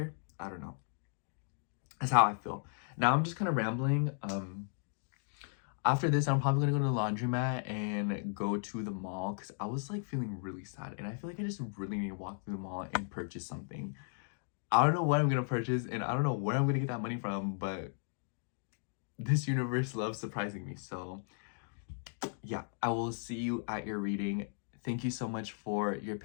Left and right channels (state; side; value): silent; right; digital silence